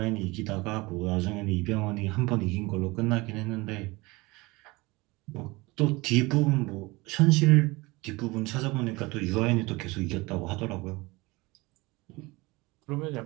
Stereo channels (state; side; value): quieter; left; 23.1 dB